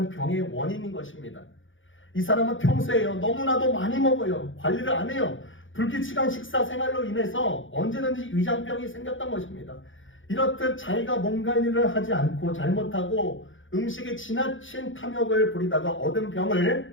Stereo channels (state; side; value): late; right; 0.57 ms